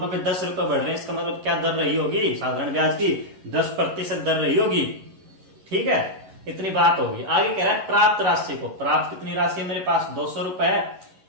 पे 10 रुपए बढ़ रहे हैं, इसका मतलब क्या दर रही होगी? साधारण ब्याज की 10% दर रही होगी। ठीक है, इतनी बात होगी। आगे कह रहा है प्राप्त राशि को, प्राप्त कितनी राशि है मेरे पास? 200 रुपए है।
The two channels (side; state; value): left; late; 11 ms